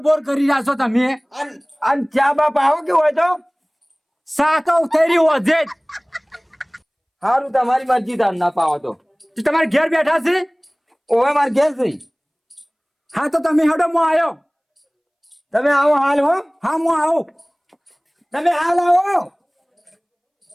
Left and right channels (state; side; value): identical; both; correlation 1.00